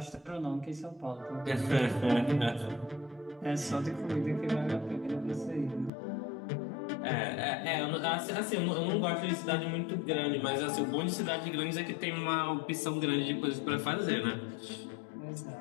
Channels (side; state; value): right; drops out; at 5.9 s